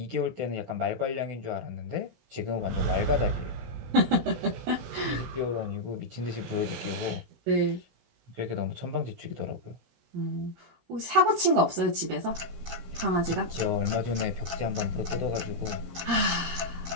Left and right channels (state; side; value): late; left; 16 ms